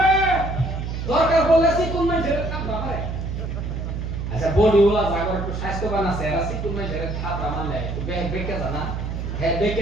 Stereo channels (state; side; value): noise; right; hum, 4 dB below the sound